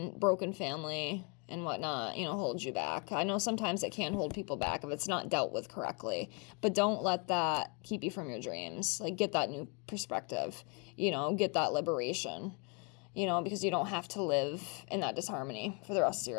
broken family and whatnot, hold you back. I know sometimes it can hold people back if it's not dealt with correctly, but don't let that keep you from your dreams. Get that new perspective, get that liberation, because you don't have to live in that disharmony for the rest of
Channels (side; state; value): right; quieter; 34.3 dB